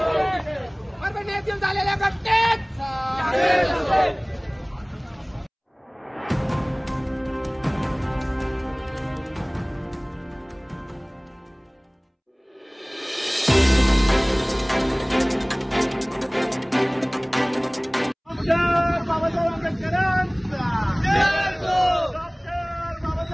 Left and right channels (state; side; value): identical; both; correlation 1.00